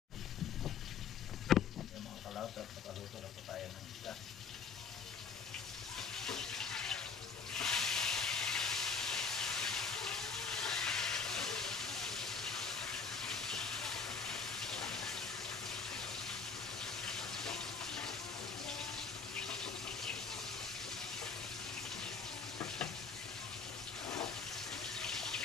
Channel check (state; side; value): quieter; right; 5.5 dB